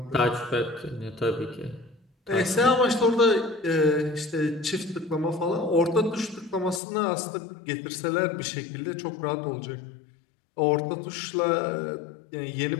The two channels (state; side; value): drops out; right; at 6.8 s